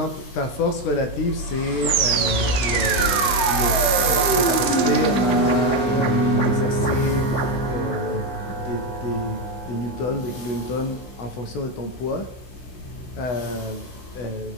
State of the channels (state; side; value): late; right; 16 ms